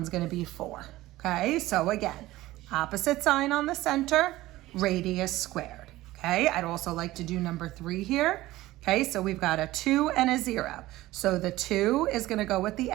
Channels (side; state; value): left; quieter; 17.1 dB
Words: going to be 4. Okay, so again, opposite sign on the center, radius squared. Okay, I'd also like to do number 3 here. Okay, so we've got a 2 and a 0. So the 2 is going to go with the